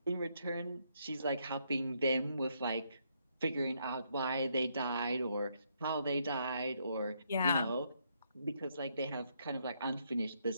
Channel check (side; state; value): both; inverted; correlation -0.74